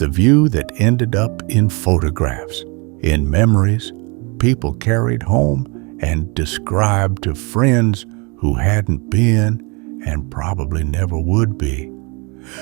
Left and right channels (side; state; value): left; quieter; 30.3 dB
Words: view that ended up in photographs, in memories people carried home and described to friends who hadn't been and probably never would be.